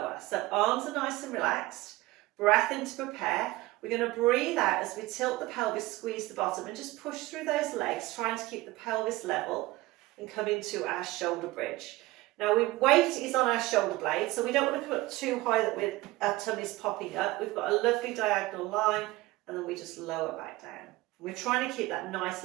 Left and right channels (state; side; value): quieter; left; 19.4 dB